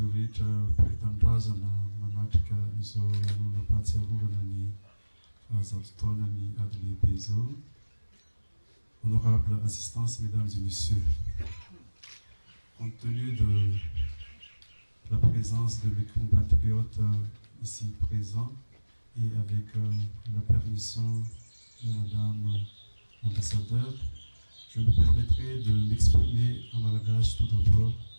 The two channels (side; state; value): both; inverted; correlation -1.00